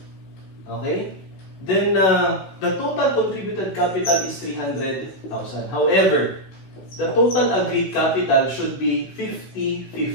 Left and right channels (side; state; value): right; late; 16 ms